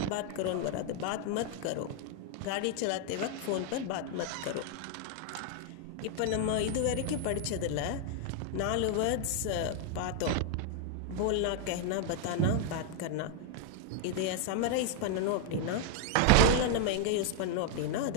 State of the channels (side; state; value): both; different; correlation 0.00